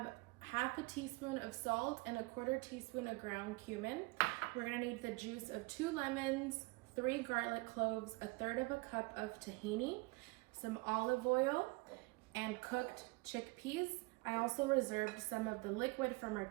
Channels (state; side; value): quieter; left; 26.0 dB